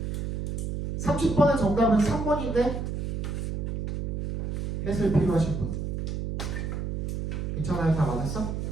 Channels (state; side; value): noise; right; hum, 2 dB below the sound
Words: 30번의 정답은 3번인데 해설 필요하신 분 괜찮아요? 다 맞았어?